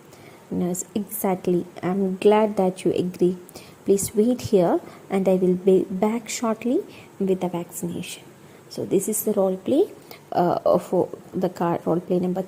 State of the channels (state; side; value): identical; both; correlation 1.00